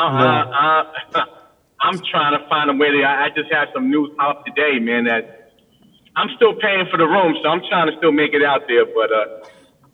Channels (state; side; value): identical; both; correlation 1.00